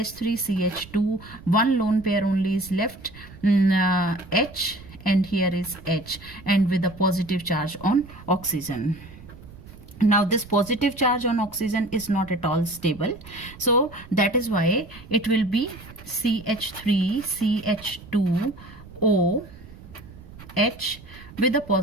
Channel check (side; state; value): right; noise; rumble, 18 dB below the sound